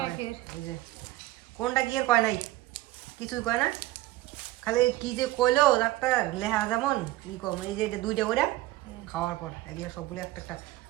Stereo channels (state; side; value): quieter; left; 17.2 dB